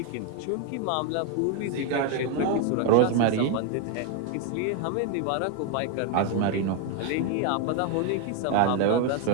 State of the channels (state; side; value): different; both; correlation 0.01